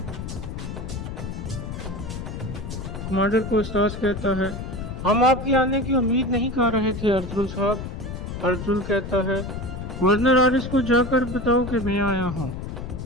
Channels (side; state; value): left; noise; rumble, 7 dB below the sound